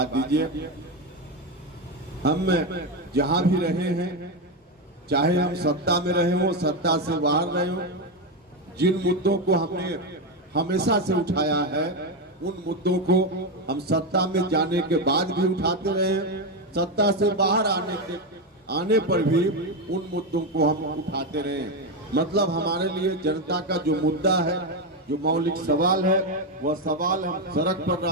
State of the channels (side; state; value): both; normal; correlation 0.10